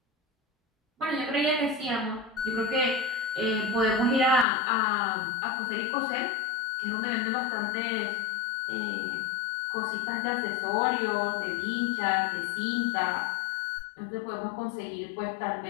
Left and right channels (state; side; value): drops out; right; at 4.5 s